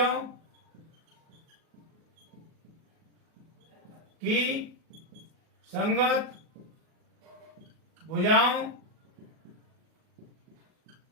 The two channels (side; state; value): left; late; 38 ms